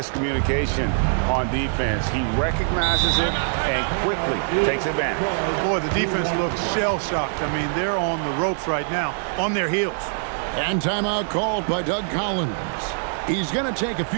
on defense. He recognizes it and quickly takes advantage. Boy, the defense looks shell-shocked. I mean, they're on the ropes right now, on their heels. And timeout called by Doug Collins. He's going to take a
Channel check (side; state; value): left; silent; digital silence